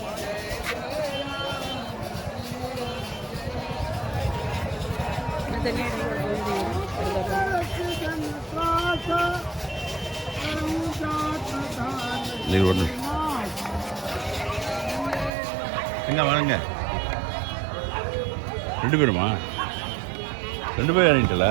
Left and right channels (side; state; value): left; drops out; at 15.3 s